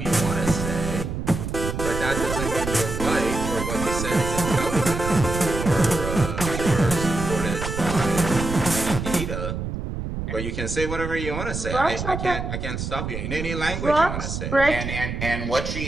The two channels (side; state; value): right; noise; rumble, 5 dB below the sound